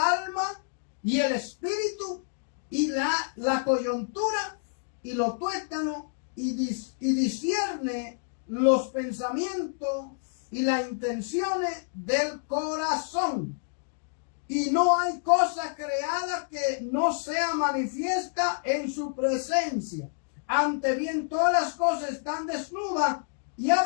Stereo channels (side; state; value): right; silent; digital silence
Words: y el espíritu, y la coyuntura, y los tuétanos, y discierne los pensamientos y las intenciones del corazón. Y no hay cosa creada que no sea manifiesta en su presencia. Ante bien todas las cosas están desnudas y